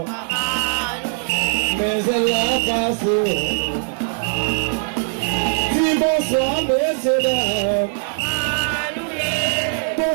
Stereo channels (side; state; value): left; silent; 65 dB below the other